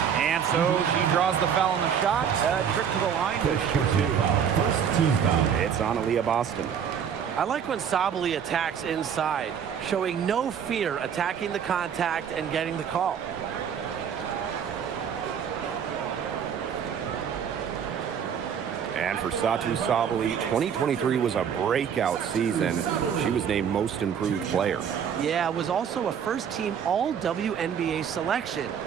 And so she draws the foul on the shot. A trip to the line. First team foul. It's on Aaliyah Boston. I like when Sabali attacks inside, showing no fear attacking the contact and getting the call. And for Satou Sabali, 2023 was a breakout season. She was named Most Improved Player. Yeah, it was also a first-team All-WNBA selection.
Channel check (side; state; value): left; quieter; 7.9 dB